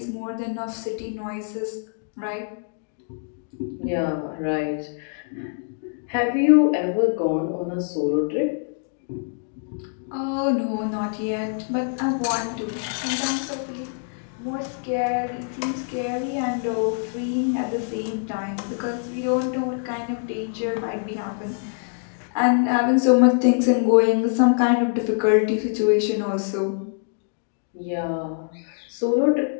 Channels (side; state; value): right; silent; 62 dB below the other